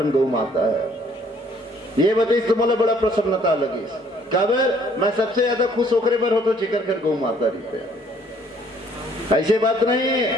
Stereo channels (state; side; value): normal; both; correlation 0.61